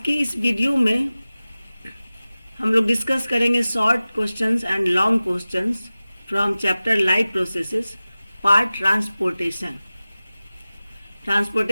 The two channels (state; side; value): inverted; both; correlation -0.97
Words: की इस वीडियो में हम लोग डिस्कस करेंगे short questions and long questions from chapter life processes part transportation.